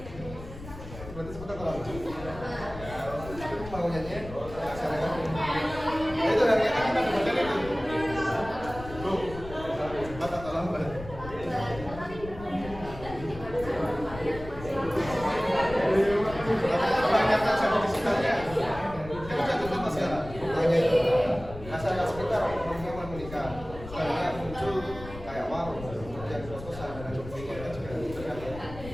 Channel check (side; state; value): left; noise; rumble, 13 dB below the sound